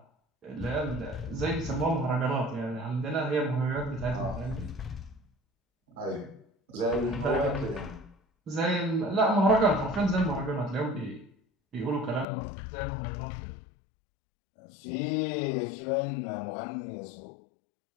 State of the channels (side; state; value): right; drops out; at 12.2 s